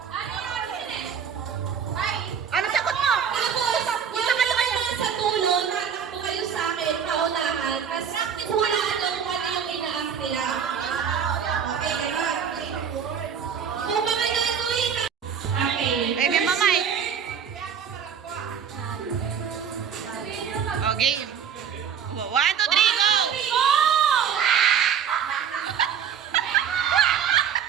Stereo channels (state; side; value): quieter; left; 7.7 dB